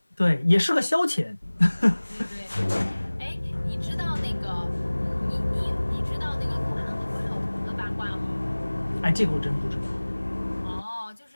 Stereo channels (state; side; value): inverted; both; correlation -1.00